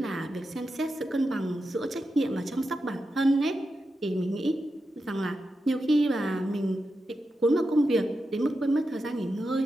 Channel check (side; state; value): both; normal; correlation 0.89